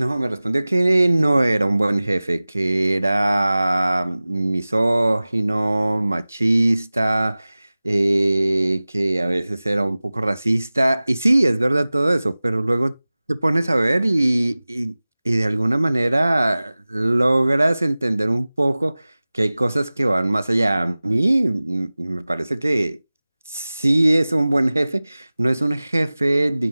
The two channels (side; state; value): both; inverted; correlation -0.98